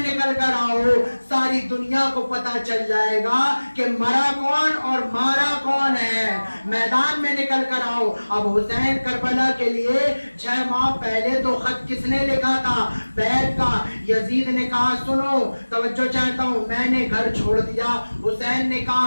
कर आओ, सारी दुनिया को पता चल जाएगा कि मरा कौन और मारा कौन है। मैदान में निकल कर आओ। अब हुसैन करबला के लिए 6 माह पहले तो खत किसने लिखा था, बैत का। यजीद ने कहा सुनो तवज्जो चाहता हूँ, मैंने घर छोड़ दिया। हुसैन ने कहा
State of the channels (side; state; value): both; inverted; correlation -1.00